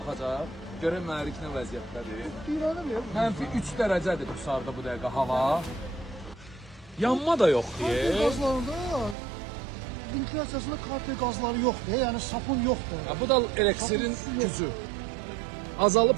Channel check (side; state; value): left; drops out; at 9.2 s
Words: Görək mühərrik nə vəziyyətdədir. Mənfi 3 dərəcədir Qusarda bu dəqiqə hava. Yanma da yoxdur. Gazlarda ventiliyasiyasında kartel qazları yoxdur, yəni sapun yoxdur. Bu da eliksirin gücü.